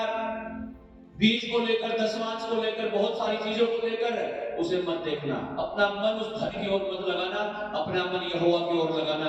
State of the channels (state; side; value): identical; both; correlation 1.00